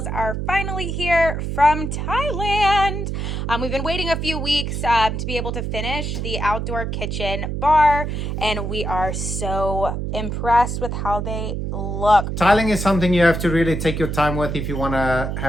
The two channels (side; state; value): right; noise; hum, 3 dB below the sound